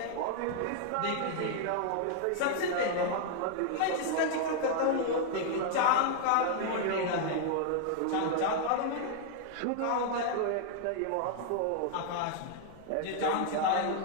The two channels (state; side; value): different; both; correlation 0.00